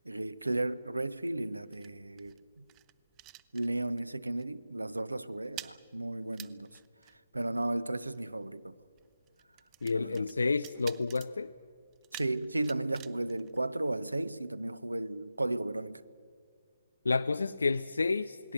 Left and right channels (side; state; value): both; inverted; correlation -0.93